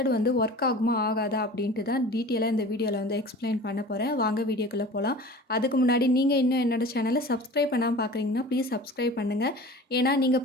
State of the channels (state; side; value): normal; both; correlation 0.39